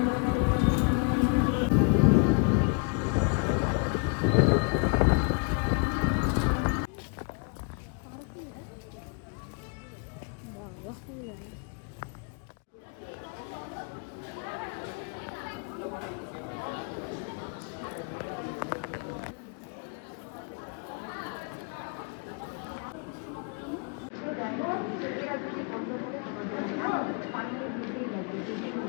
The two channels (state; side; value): quieter; right; 37.5 dB